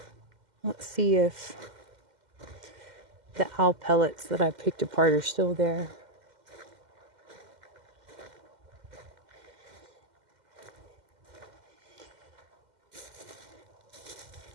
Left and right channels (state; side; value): late; left; 2.1 ms